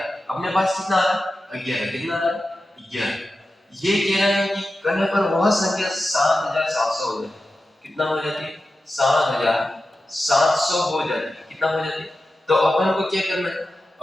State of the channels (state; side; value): normal; both; correlation 0.92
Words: अपने पास कितना आ रहा है 11, कितना आ रहा है 11। ये कह रहा है कि करने पर वह संख्या 7700 हो जाती है। कितना हो जाती है 7700 हो जाती है। कितना हो जाती है? तो अपन को क्या करना है,